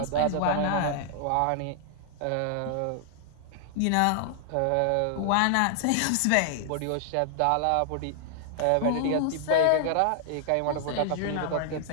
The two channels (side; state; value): both; different; correlation 0.00